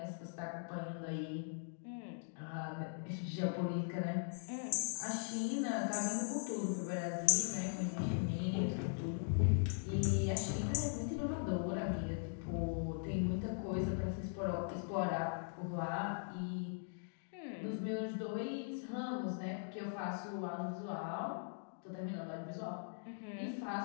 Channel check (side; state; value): right; silent; digital silence